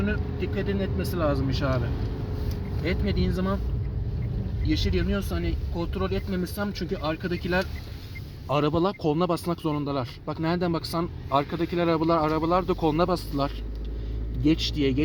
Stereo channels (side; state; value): both; identical; correlation 1.00